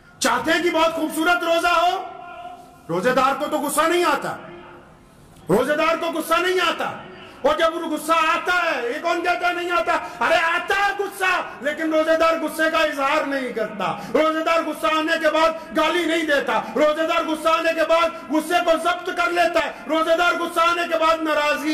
چاہتے ہیں کہ بہت خوبصورت روزہ ہو، روزے دار کو تو غصہ نہیں آتا، روزے دار کو غصہ نہیں آتا، اور جب غصہ آتا ہے، یہ کون کہتا ہے نہیں آتا؟ ارے آتا ہے غصہ، لیکن روزے دار غصے کا اظہار نہیں کرتا، روزے دار غصہ آنے کے بعد گالی نہیں دیتا، روزے دار غصہ آنے کے بعد غصے کو ضبط کر لیتا ہے، روزے دار غصہ آنے کے بعد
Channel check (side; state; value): both; identical; correlation 1.00